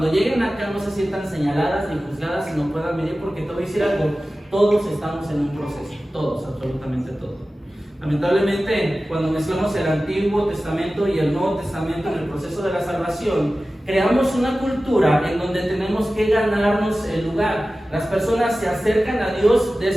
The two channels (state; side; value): normal; both; correlation 0.95